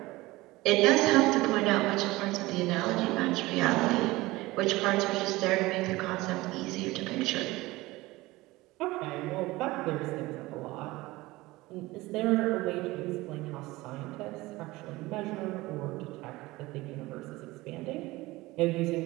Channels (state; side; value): quieter; left; 19.9 dB